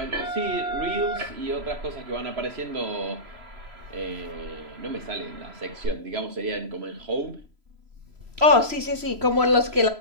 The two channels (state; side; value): late; left; 3.0 ms